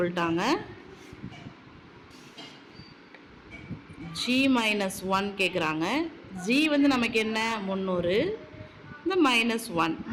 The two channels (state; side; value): identical; both; correlation 1.00